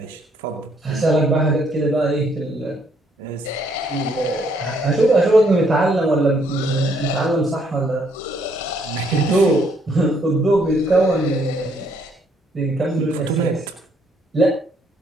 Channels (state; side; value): normal; both; correlation 0.69